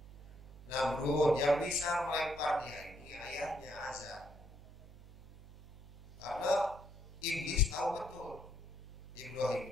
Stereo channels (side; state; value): right; noise; hum, 15 dB below the sound